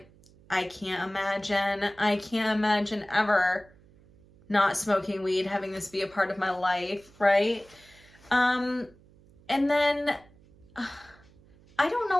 I can't imagine ever not smoking weed, having this be a part of my life, right? And then I don't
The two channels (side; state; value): right; noise; hum, 27 dB below the sound